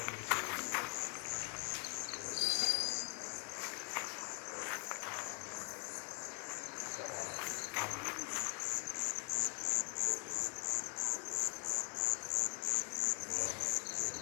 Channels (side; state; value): right; quieter; 32.8 dB